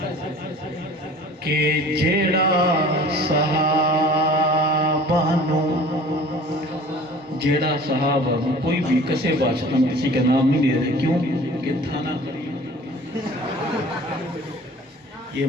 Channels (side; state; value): both; normal; correlation 0.46